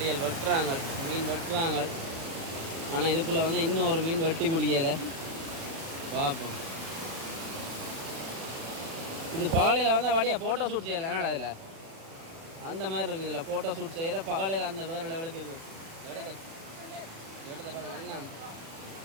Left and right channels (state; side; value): late; left; 36 ms